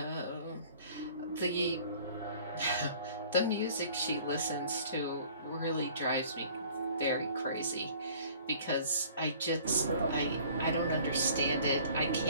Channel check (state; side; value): inverted; both; correlation -0.51